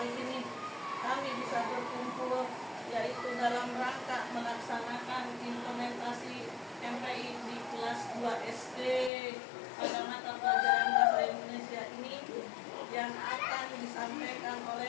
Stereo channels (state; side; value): drops out; right; at 9.1 s